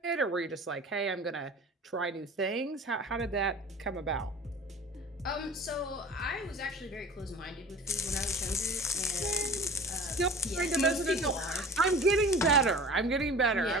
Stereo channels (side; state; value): both; normal; correlation 0.41